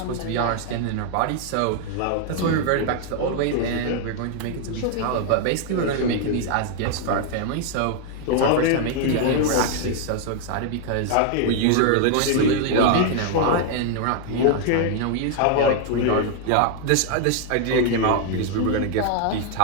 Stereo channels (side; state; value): both; different; correlation 0.00